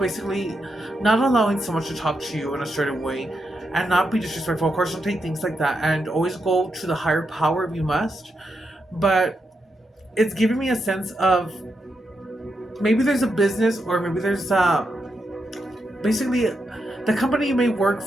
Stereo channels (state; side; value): normal; both; correlation 0.84